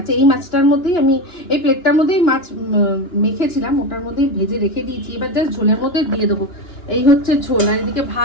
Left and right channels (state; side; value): late; right; 2.9 ms